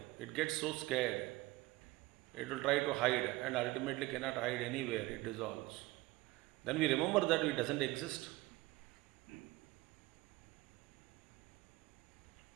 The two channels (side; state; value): left; quieter; 20.1 dB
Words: It gets so scared. It will try to hide and ultimately cannot hide anywhere. It dissolves. Then we remember that it doesn't exist.